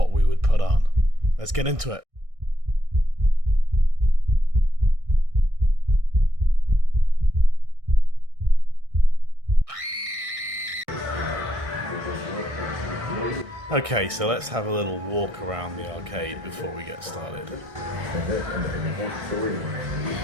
we would put on. Let's get into it. Okay, so let's have a little walk around the arcade before we get started.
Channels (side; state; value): left; late; 1.6 ms